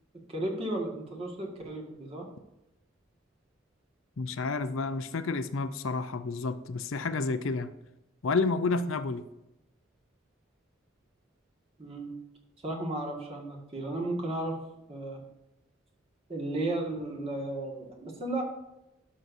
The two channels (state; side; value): normal; both; correlation 0.41